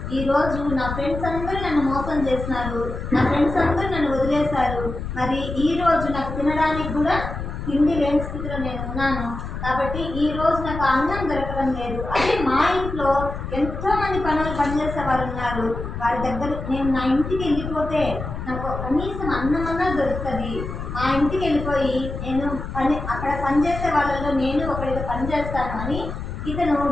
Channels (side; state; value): left; noise; rumble, 7 dB below the sound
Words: ఈరోజు నా ఫ్రెండ్స్ అందరూ నన్ను మోసం చేసినారు, నా ఫ్రెండ్స్ అందరూ నన్ను వదిలేశారు. మరి ఈరోజు నాకు తినడానికి కూడా తిండి లేని స్థితిలో నేను ఉన్నాను. కాబట్టి ఈరోజు నాకు అన్నం దొరకడం లేదు. అదే మా ఇంట్లో ఎంతోమంది పనిచేసే వారు ఉన్నారు. వారి దగ్గర నేను నా ఇంటికి వెళ్ళిపోతే నాకు కనీసం అన్నమన్నా దొరుకుతుంది. మా ఇంటికి వెళ్ళిపోయి నేను అక్కడ పనిచేసే వాళ్ళలో నేను ఒకరితో పని చేస్తాను అని ఇతను